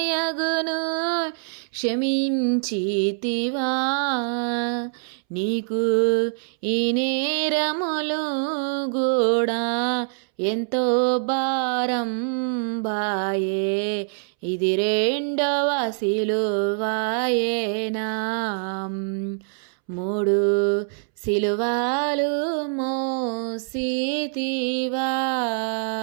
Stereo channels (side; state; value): left; silent; 62 dB below the other